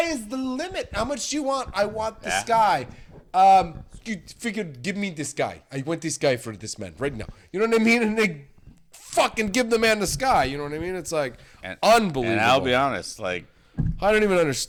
is the limit. How much do you want? I want the sky. You figured, give me this guy. I want this guy for this man right now. You know what I mean? And they fucking give the man the sky. You know what I mean? It's like unbelievable. And I'll be honest, like, I don't even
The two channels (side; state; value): both; identical; correlation 1.00